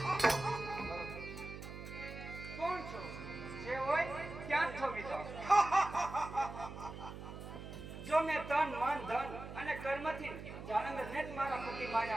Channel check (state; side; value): noise; right; hum, 10 dB below the sound